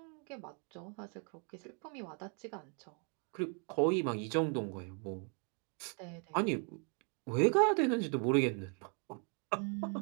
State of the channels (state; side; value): quieter; left; 38.4 dB